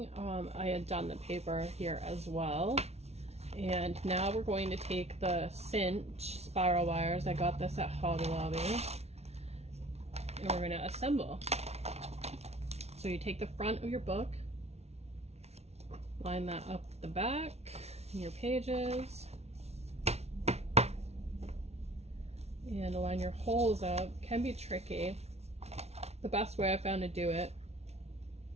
I had done the paper here as well. And now we're going to take the cinch spiral wires. I got this at Hobby Lobby. And we're going to assemble. So you take the front of your book, line that up the back, your pages, and line your holes up. Can be tricky. The best way I found to do it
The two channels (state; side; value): late; left; 0.31 ms